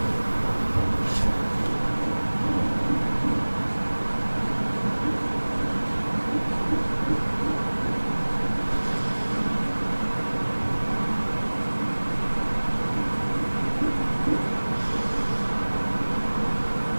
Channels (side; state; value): both; inverted; correlation -1.00